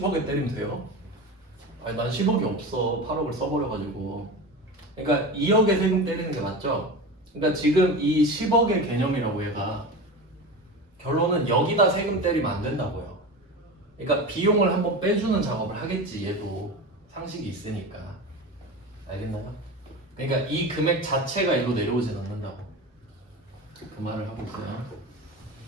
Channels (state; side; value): normal; both; correlation 0.27